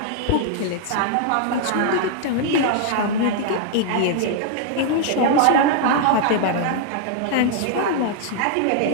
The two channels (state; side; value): different; both; correlation -0.01